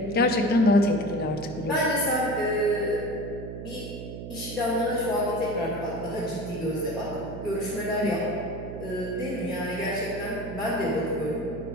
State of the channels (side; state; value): right; noise; hum, 9 dB below the sound